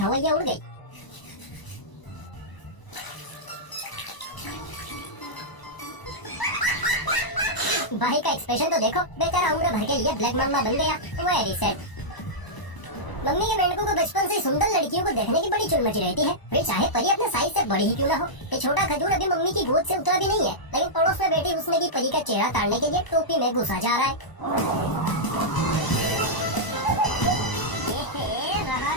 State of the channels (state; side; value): late; right; 1.0 ms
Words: उड़ गई। भाई का एक्सप्रेशन तो देखो, बेचारा उम्र भर के लिए ब्लैक मम्मा बन गया। Very sad. मम्मी के मेंढकों को बचपन से सुंदर लड़कियों को देखने की बड़ी चुल मची रहती है, फिर चाहे परी अपने साइज से बड़ी ही क्यों ना हो। ये छोटा खजूर अभी मम्मी की गोद से उतरा भी नहीं है, लेकिन पड़ोस में बैठी उसने की परी का चेहरा ताड़ने के लिए टोपी में घुसा जा रहा है। रहा